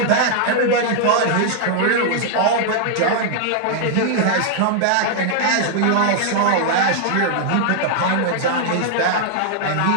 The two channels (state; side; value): different; both; correlation -0.01